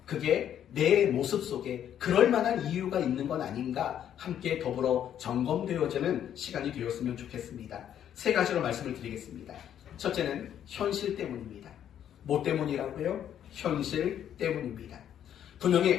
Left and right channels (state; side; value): quieter; right; 10.0 dB